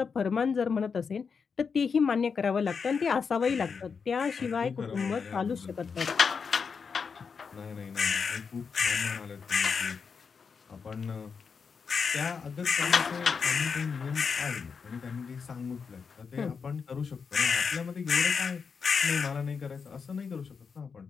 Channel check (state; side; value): quieter; right; 5.7 dB